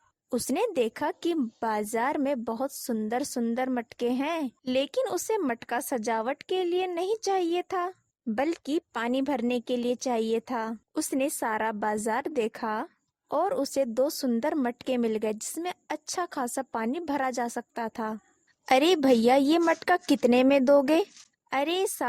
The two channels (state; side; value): identical; both; correlation 1.00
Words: उसने देखा कि बाजार में बहुत सुंदर सुंदर मटके हैं, लेकिन उसे मटका सजावट के लिए नहीं चाहिए था, बल्कि पानी भरने के लिए चाहिए था। उसने सारा बाजार देखा और उसे दो सुंदर मटके मिल गए जिसमें अच्छा खासा पानी भरा जा सकता था। अरे भैया, ये मटका कितने में दोगे? अरे